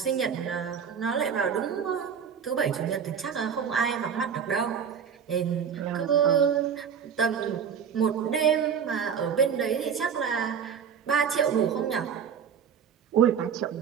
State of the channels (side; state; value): left; quieter; 7.3 dB